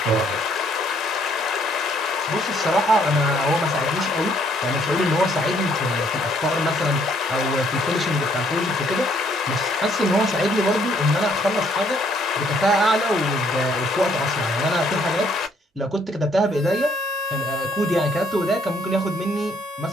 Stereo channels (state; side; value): normal; both; correlation 0.66